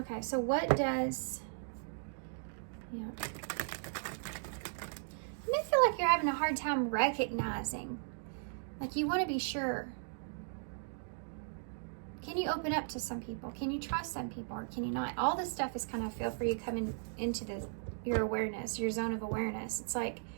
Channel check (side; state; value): left; silent; digital silence